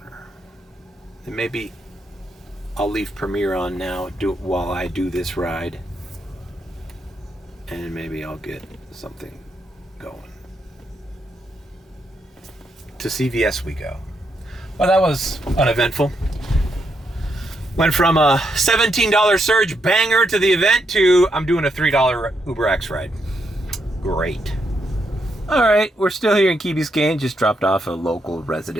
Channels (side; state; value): both; normal; correlation 0.79